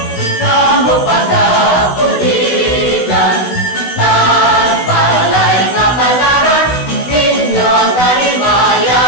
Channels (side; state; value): right; late; 16 ms